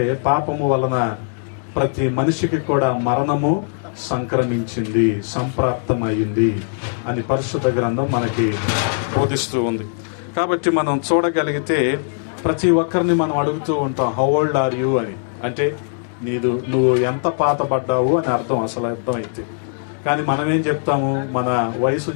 పాపము వలన ప్రతి మనిషికి కూడా మరణము సంక్రమించింది, సంప్రాప్తమైంది అని పరిశుద్ధ గ్రంథం మనకి బోధిస్తూ ఉంది. కాబట్టి మనం చూడగలిగితే ప్రతి ఒక్కరిని మనం అడుగుతూ ఉంటాం, హౌ ఓల్డ్ ఆర్ యూ అని. అంటే నువ్వు ఎంత పాతబడ్డావు అని అర్థం అయితే. కానీ మనం ఏం చెప్తాము, మన వయసు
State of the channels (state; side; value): silent; right; 66 dB below the other